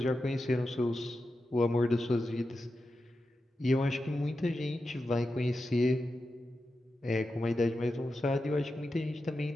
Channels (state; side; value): normal; both; correlation 0.90